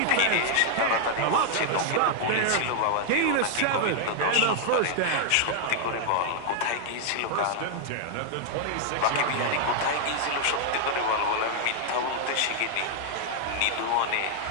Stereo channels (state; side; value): different; both; correlation 0.00